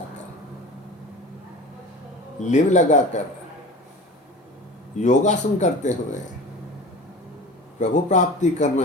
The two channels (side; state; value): both; normal; correlation 0.36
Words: लिव लगाकर, योगासन करते हुए प्रभु प्राप्ति करना